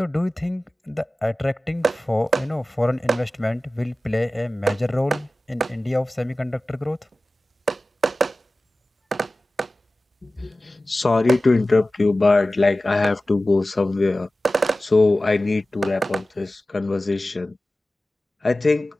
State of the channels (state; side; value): normal; both; correlation 0.96